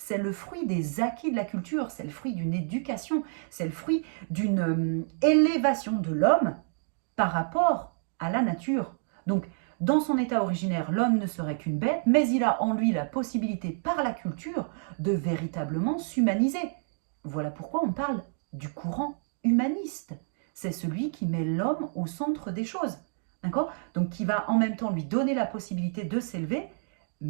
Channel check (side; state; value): left; silent; digital silence